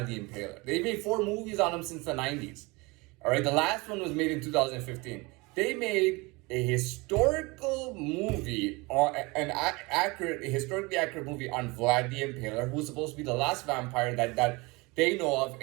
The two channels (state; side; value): quieter; left; 25.2 dB